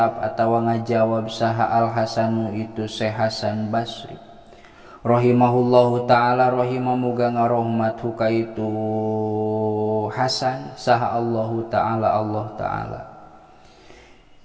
atawa ngajawab saha Al Hasanu itu Syekh Hasan Basri. Rahimahullahu ta'ala, rahimamuga ngarohmatu ka itu Hasan saha Allahu ta'ala, Allah ta'ala.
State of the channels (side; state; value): both; identical; correlation 1.00